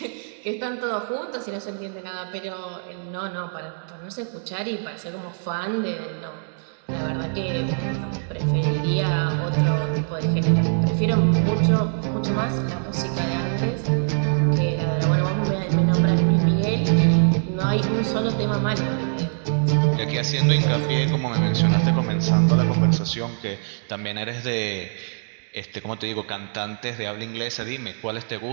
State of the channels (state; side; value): silent; left; digital silence